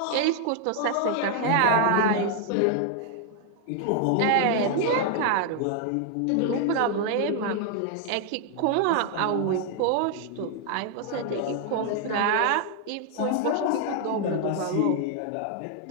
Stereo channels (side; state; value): both; different; correlation 0.00